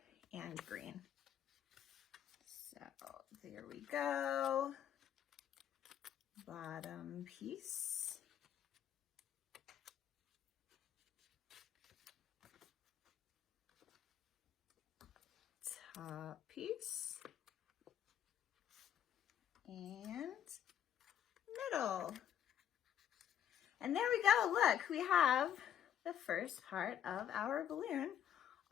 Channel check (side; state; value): right; quieter; 9.9 dB